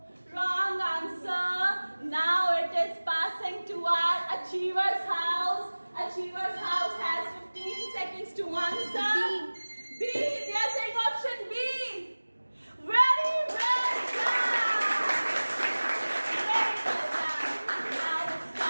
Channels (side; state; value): both; inverted; correlation -1.00